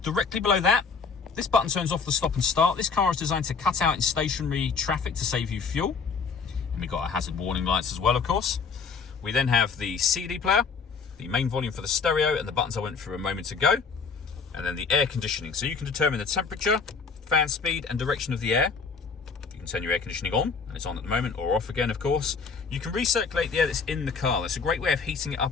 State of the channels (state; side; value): quieter; right; 5.3 dB